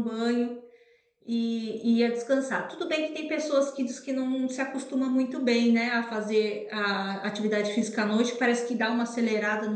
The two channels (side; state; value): both; identical; correlation 1.00